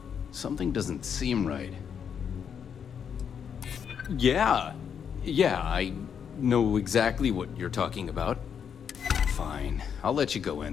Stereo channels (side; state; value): right; quieter; 7.6 dB